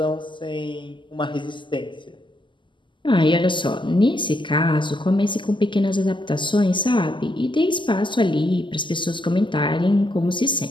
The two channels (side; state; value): right; late; 0.24 ms